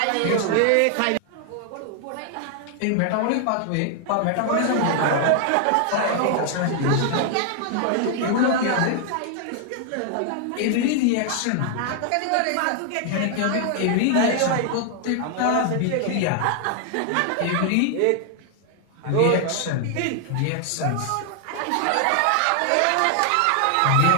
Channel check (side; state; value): both; different; correlation 0.00